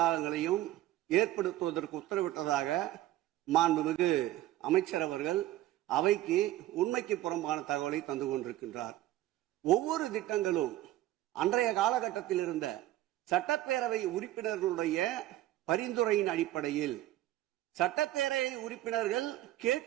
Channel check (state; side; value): quieter; left; 14.7 dB